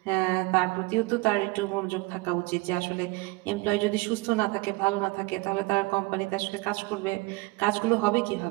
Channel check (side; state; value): left; quieter; 24.0 dB